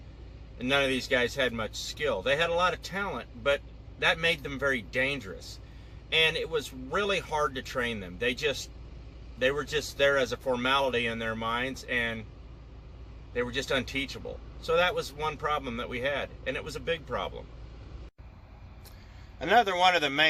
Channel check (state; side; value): identical; both; correlation 1.00